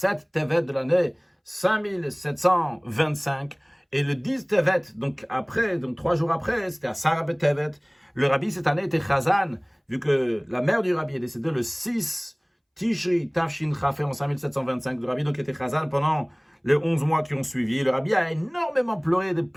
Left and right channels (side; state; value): both; identical; correlation 1.00